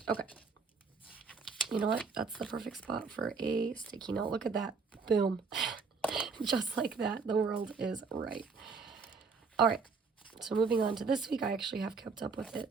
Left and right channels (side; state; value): left; quieter; 4.9 dB